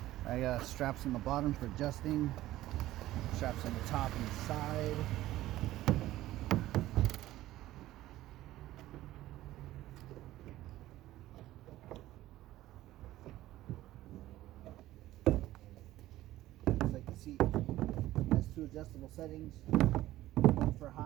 I got straps on the bottom for adjusting. Straps on the top and the side. Looks like the seat has two adjustable settings, one for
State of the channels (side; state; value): left; quieter; 15.3 dB